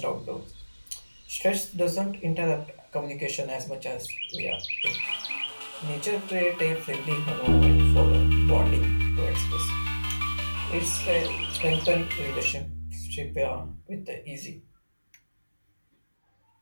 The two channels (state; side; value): inverted; both; correlation -1.00